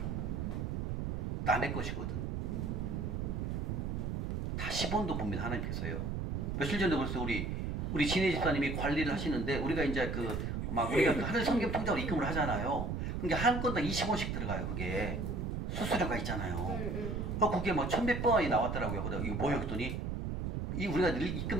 남의 것이거든. 다 10원도 봅니다. 하나님께서요. 며칠 전에 벌써 우리 진혜 집사님이 관리를 하시는데 우리가 이제 우리가 그 하늘 성경 통장으로 입금을 하잖아요. 그게 한 건당 20원씩 들어가요. 그게 수수료가 있잖아요. 그게 막 1,100번 원이 나왔더라고요. 그러다 이거 뭐예요? 그랬더니 우리가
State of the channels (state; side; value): noise; right; rumble, 2 dB below the sound